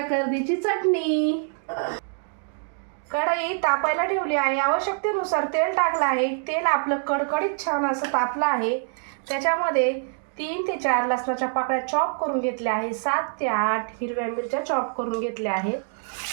कर्दीची चटणी। कढई तापायला ठेवली आहे। आवश्यकतेनुसार तेल टाकलं आहे। तेल आपलं कडकडीत छान असं तापलं आहे। त्याच्यामध्ये 3 ते 4 लसणाच्या पाकळ्या चॉप करून घेतल्या आहे। 7 ते 8 हिरव्या मिरच्या चॉप करून घेतल्या आहेत।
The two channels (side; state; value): left; silent; 58 dB below the other